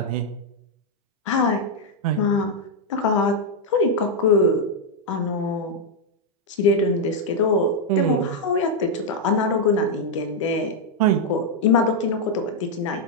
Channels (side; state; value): both; normal; correlation -0.01